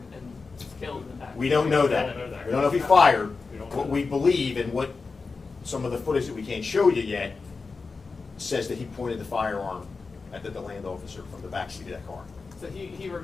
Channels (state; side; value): quieter; right; 4.4 dB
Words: and killed in the back. We don't know that. We don't know that. We don't know if he fired. We don't know What that. we believe and what some of the footage that we can't show you yet says that he pointed the firearm at the DeLand officer from the backseat of that car. So he